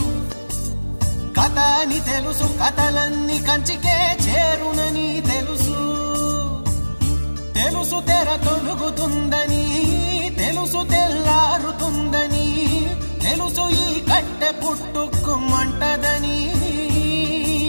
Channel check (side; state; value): both; inverted; correlation -1.00